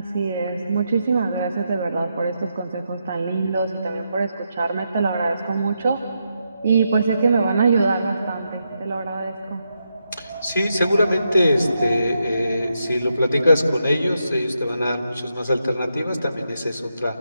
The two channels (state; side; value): inverted; both; correlation -0.83